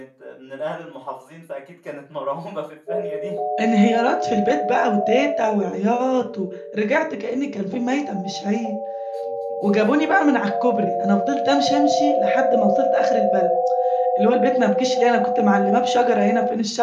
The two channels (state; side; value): identical; both; correlation 1.00